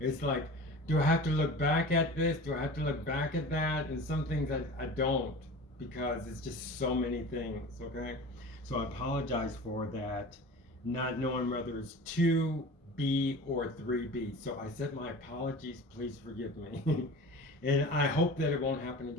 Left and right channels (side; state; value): both; normal; correlation 0.36